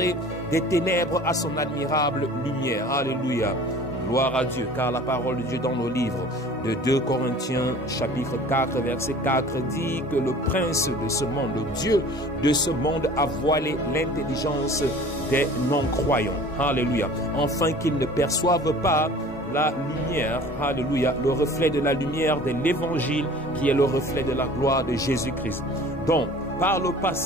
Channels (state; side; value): normal; both; correlation 0.45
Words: des ténèbres à son admirable lumière. Alléluia. Gloire à Dieu, car la parole de Dieu dans le livre de 2 Corinthiens chapitre 4 verset 4 dit que le prince de ce monde, le Dieu de ce monde a voilé l'intelligence des non-croyants. Alléluia. Afin qu'ils ne perçoivent pas la lumière, alléluia, le reflet de la lumière de l'évangile qui est le reflet de la gloire de Jésus-Christ. Donc, par le